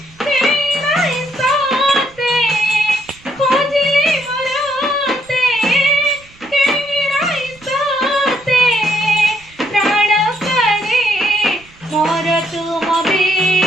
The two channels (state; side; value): noise; right; rumble, 27 dB below the sound